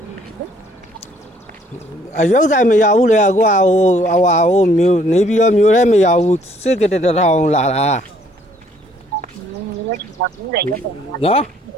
အရုပ်ဆိုင်မရဘူးလေကွာဟိုမျိုးနေပြီးတော့မျိုးထဲမရဘူးစစ်ကတထောင်လာတာနော်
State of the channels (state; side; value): normal; both; correlation 0.63